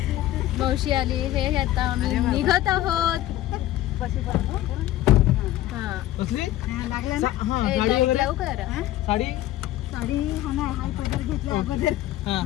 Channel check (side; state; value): right; quieter; 14.5 dB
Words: मावशी आली. हे आता आम्ही निघत आहोत. हा लाईट लावू का जरा. साडी